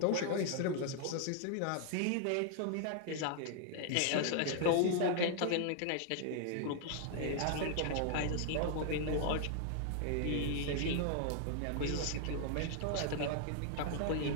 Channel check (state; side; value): different; both; correlation 0.00